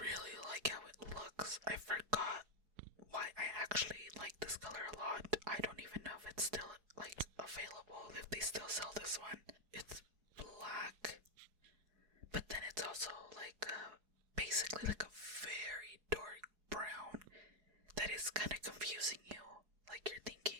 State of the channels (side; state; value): left; late; 4.7 ms